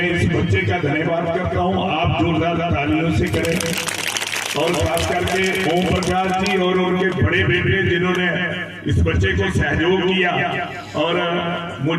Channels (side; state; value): both; identical; correlation 1.00